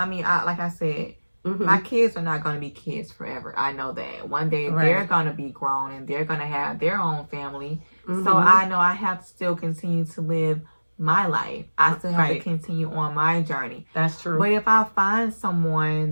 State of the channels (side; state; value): both; inverted; correlation -1.00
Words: mean, like I said, my kids are not going to be kids forever. I know that. One day they're going to be grown and they're going to have their own family. So I know I have to still continue to live my life. I still have to continue on my journey. That's true. But if I find